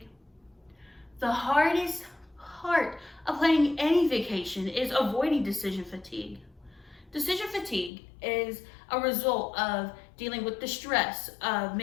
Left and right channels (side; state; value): right; drops out; at 7.9 s